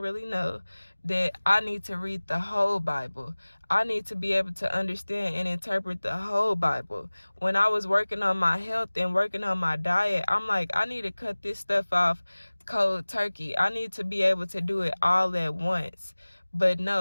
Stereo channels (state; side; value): inverted; both; correlation -1.00